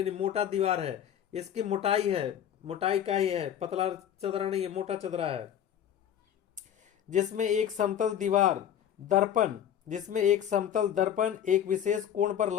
मोटा दीवार है, इसकी मोटाई का ही है, पतला चदरा नहीं है, मोटा चदरा है। जिसमें एक समतल दर्पण एक विशेष कोण पर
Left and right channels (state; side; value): quieter; right; 9.7 dB